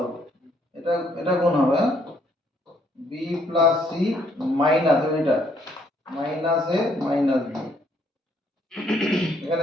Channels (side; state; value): both; normal; correlation 0.68